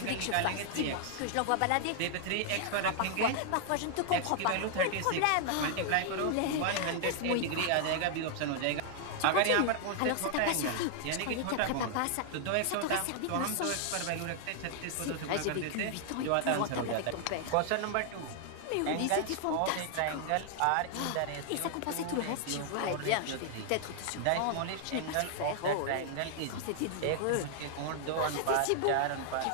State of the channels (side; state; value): both; different; correlation 0.00